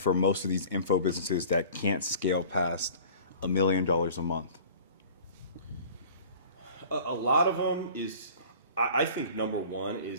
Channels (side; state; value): both; inverted; correlation -0.45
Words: most of these info businesses that can't scale past $1 million a month? A lot of them is, I think number one